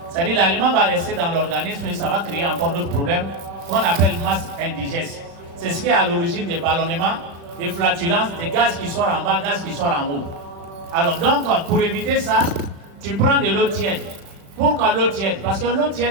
C'est-à-dire l'aliment va rester dans l'organisme et ça va créer encore d'autres problèmes qu'on appelle masse indigeste. C'est ce qui est à l'origine des ballonnements, des flatulences, des gaz qui sortent en bas, gaz qui sortent en haut. Alors donc, pour éviter ça, tu prends de l'eau tiède. Pourquoi l'eau tiède? Parce que l'eau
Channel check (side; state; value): left; late; 35 ms